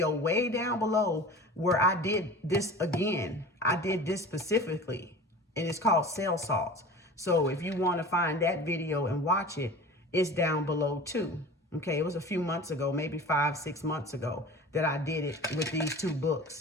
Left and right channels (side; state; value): both; normal; correlation 0.37